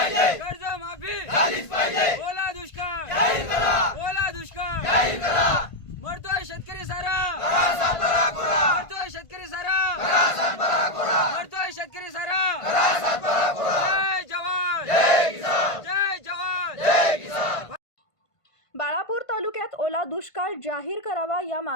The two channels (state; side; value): late; right; 1.5 ms